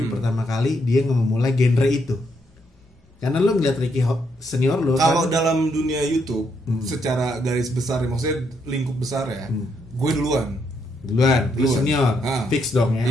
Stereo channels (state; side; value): normal; both; correlation 0.76